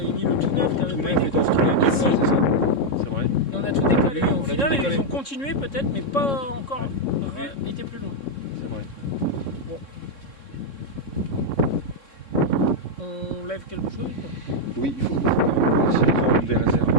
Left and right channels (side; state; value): right; late; 3.6 ms